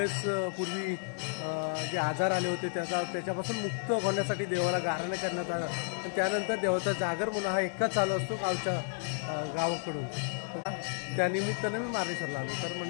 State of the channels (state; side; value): silent; right; digital silence